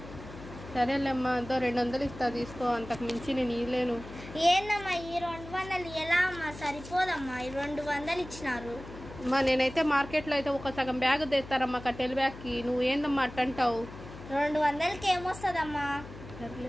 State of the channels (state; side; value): noise; left; hum, 15 dB below the sound